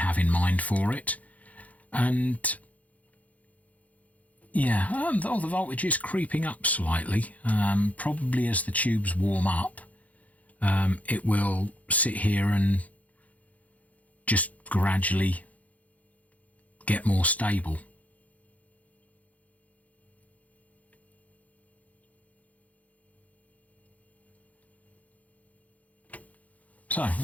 in mind for it. And yeah, the voltage is creeping up slightly, probably as the tubes warm up. It will sit here and just gradually get more stable. So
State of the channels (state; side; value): late; right; 0.071 ms